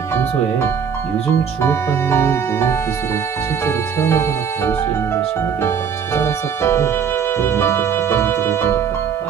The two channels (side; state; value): left; quieter; 7.3 dB